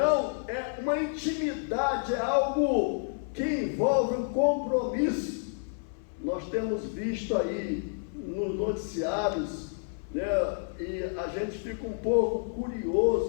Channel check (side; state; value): right; silent; 58 dB below the other